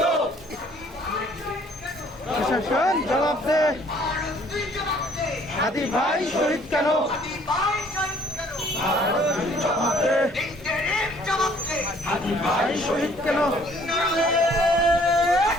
প্রশাসন জবাব দে, ভারত তুই জবাব দে। হাদি ভাই শহীদ কেন? হাদি ভাই শহীদ কেন? জবাব দে, ইন্টারিম জবাব দে। হাদি ভাই শহীদ কেন? নারায়ে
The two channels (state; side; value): normal; both; correlation 0.59